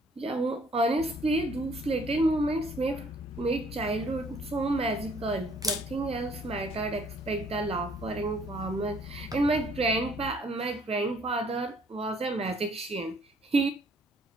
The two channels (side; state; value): both; normal; correlation 0.61